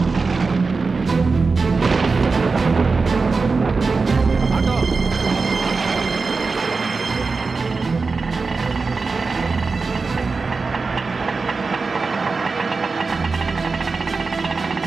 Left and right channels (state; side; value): quieter; left; 4.3 dB